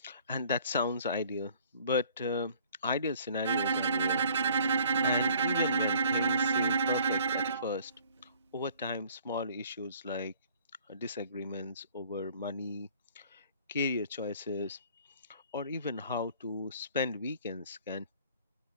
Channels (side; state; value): both; inverted; correlation -0.55